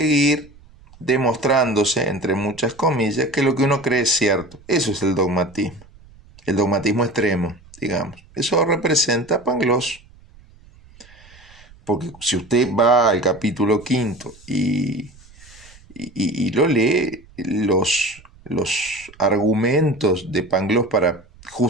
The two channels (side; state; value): right; noise; rumble, 25 dB below the sound